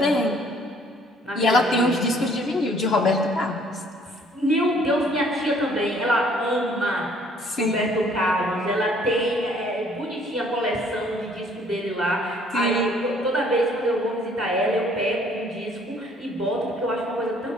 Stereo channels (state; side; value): normal; both; correlation 0.60